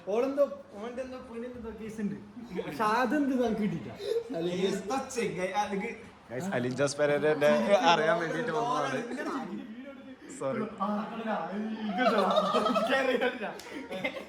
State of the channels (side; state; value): both; identical; correlation 1.00